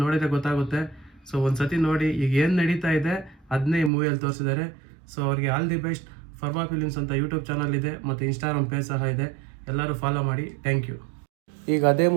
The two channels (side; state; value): left; drops out; at 3.9 s